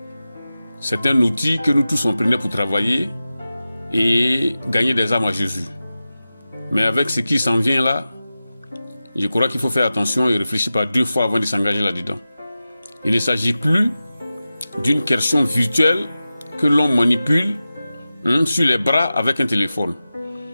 C'est un outil que nous tous on prenait pour travailler et gagner des âmes à Jésus. Mais avec ce qui s'en vient là, je crois qu'il faut faire attention et réfléchir par deux fois avant de s'engager là-dedans. Il ne s'agit plus d'une question virtuelle que l'on manipule sur les bras avec un téléphone.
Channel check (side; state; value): both; inverted; correlation -0.94